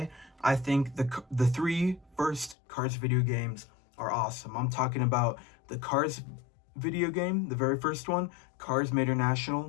I think the three first Cars video games are awesome. I'm talking about the Cars video game, the very first one, Cars Made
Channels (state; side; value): drops out; right; at 2.6 s